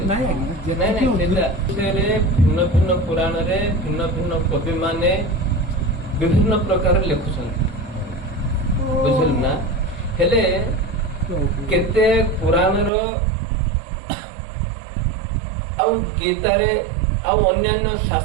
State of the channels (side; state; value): left; drops out; at 12.9 s